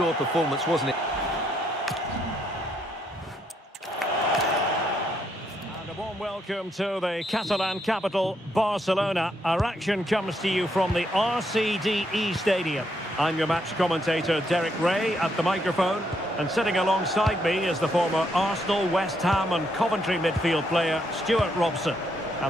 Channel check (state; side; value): normal; both; correlation 0.75